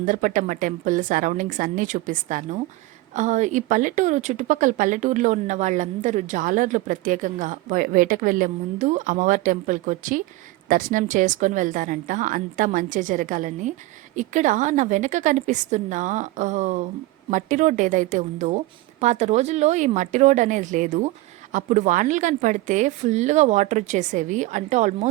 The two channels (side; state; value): left; quieter; 18.6 dB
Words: టెంపుల్ సరౌండింగ్స్ అన్నీ చూపిస్తాను. ఈ పల్లెటూరు చుట్టుపక్కల పల్లెటూరులో ఉన్న వాళ్ళందరూ జాలర్లు ప్రత్యేకంగా వేటకు వెళ్ళే ముందు అమ్మవారి టెంపుల్‌కొచ్చి దర్శనం చేసుకొని వెళ్తారంట. అంతా మంచే జరగాలని. ఇక్కడ నా వెనక కనిపిస్తున్న ఆహ్, మట్టి రోడ్ ఏదైతే ఉందో, పాత రోజుల్లో ఈ మట్టి రోడ్ అనేది లేదు. అప్పుడు వానలు గాని పడితే ఫుల్‌గా వాటర్ వచ్చేసేవి. అంటే